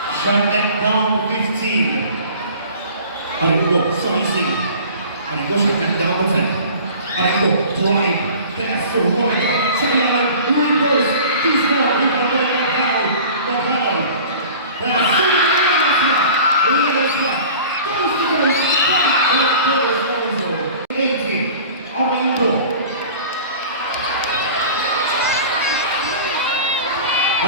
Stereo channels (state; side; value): inverted; both; correlation -0.42